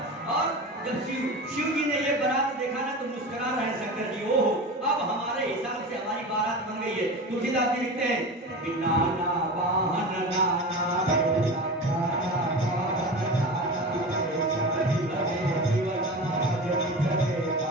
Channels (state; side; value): normal; both; correlation 0.29